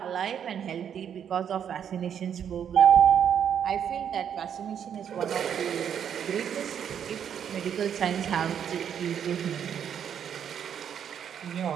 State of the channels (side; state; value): left; quieter; 8.6 dB